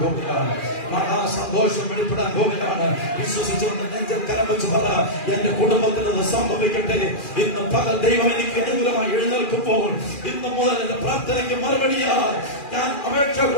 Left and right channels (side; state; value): right; late; 2.4 ms